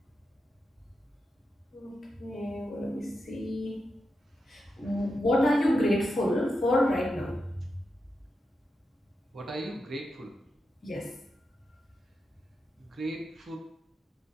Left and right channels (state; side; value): normal; both; correlation 0.88